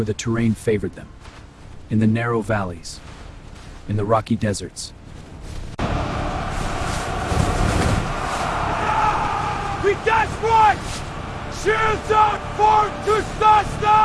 the terrain favored them, in the narrow valleys, in the rocky deserts. We desperate! Shields out for to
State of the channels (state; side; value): identical; both; correlation 1.00